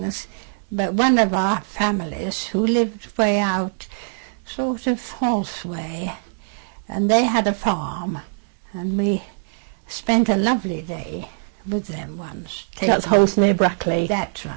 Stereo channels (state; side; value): silent; left; digital silence